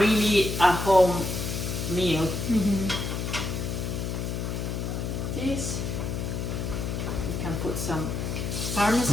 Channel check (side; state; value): left; noise; hum, 3 dB below the sound